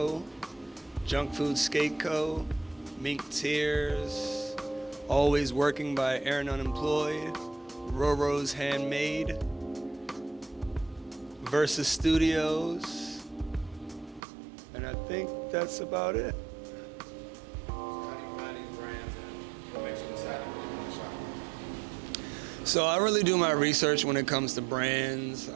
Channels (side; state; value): left; drops out; at 14.2 s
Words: Junk Food Skate Co., Mink Tears, Always Working by Aaron Unemployed, Roro's Handmade, Versus Studios, and I think that's about it. So how do you find these brands, and what makes you decide to put them in the shop? So I really do my research when it comes to brands.